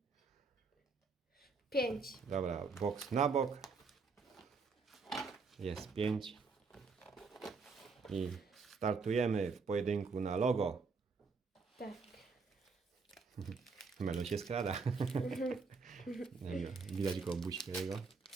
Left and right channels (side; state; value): left; quieter; 4.6 dB